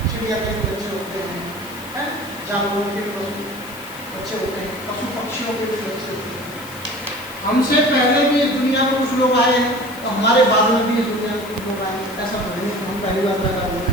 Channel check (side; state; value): left; noise; hiss, 17 dB below the sound